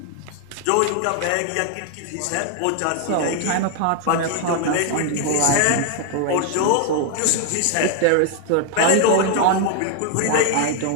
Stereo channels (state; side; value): different; both; correlation 0.00